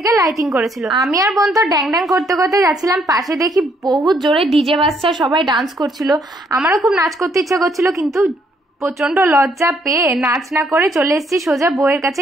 লাইটিং করেছিল। আমি আর বোন তো ড্যাং ড্যাং করতে করতে যাচ্ছিলাম, পাশে দেখি বহুত জোরে ডিজে বাজছে, সবাই ডান্স করছিল। আমারও খুব নাচ করতে ইচ্ছা করছিল, কিন্তু প্রচন্ড লজ্জা পেয়ে নাচ না করে চলে এসেছি সোজা বউয়ের কাছে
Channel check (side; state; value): both; normal; correlation 0.70